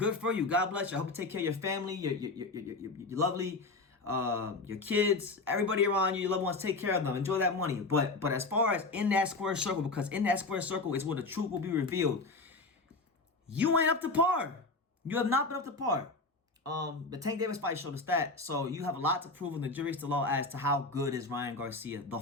for you. God bless you. I hope you take care of your family, your lovely, your kids, everybody around you, your loved ones. Take care of them. Enjoy that money. But as far as in that square circle, because in that square circle is where the truth will be revealed, you ain't up to par. You have not been up to par. The Tank Davis fight showed us that. So you have a lot to prove, and the jury's still out as to how good is Ryan Garcia, the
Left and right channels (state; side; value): quieter; right; 3.5 dB